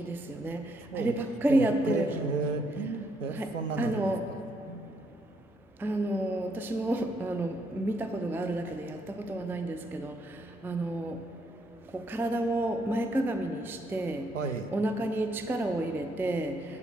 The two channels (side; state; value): both; normal; correlation 0.74